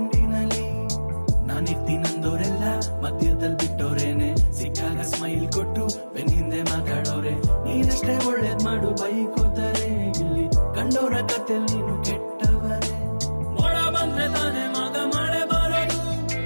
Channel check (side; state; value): both; inverted; correlation -1.00